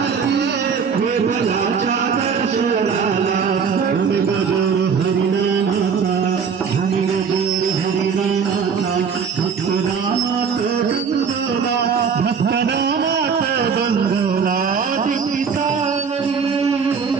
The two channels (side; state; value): left; quieter; 6.2 dB